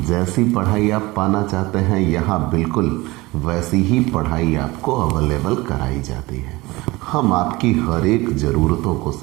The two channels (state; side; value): quieter; left; 21.4 dB